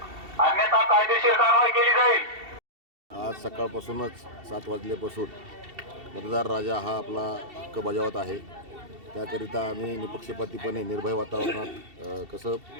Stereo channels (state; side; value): late; left; 2.7 ms